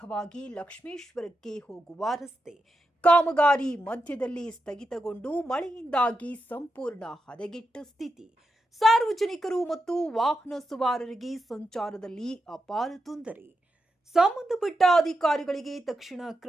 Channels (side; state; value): both; normal; correlation 0.87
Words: ಲಕ್ಷ್ಮೇಶ್ವರಕ್ಕೆ ಹೋಗುವ ರಸ್ತೆ ಕಾಮಗಾರಿ ಮಧ್ಯದಲ್ಲಿ ಸ್ಥಗಿತಗೊಂಡು ಮಳೆಯಿಂದಾಗಿ ಸಂಪೂರ್ಣ ಹದಗೆಟ್ಟ ಸ್ಥಿತಿ. ಸಾರ್ವಜನಿಕರು ಮತ್ತು ವಾಹನ ಸವಾರರಿಗೆ ಸಂಚಾರದಲ್ಲಿ ಅಪಾರ ತೊಂದರೆ. ಸಂಬಂಧಪಟ್ಟ ಅಧಿಕಾರಿಗಳಿಗೆ ತಕ್ಷಣ